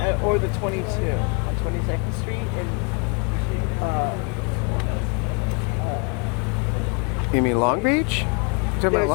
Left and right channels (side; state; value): right; quieter; 32.1 dB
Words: or the 22, 22nd Street, and You mean Long Beach? You talking there's about